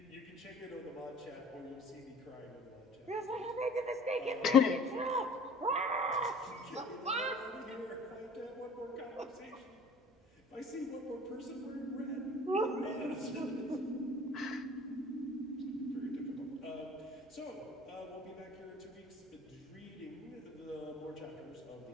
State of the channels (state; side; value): normal; both; correlation 0.48